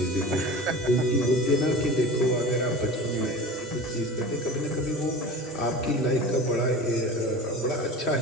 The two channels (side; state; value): both; normal; correlation 0.35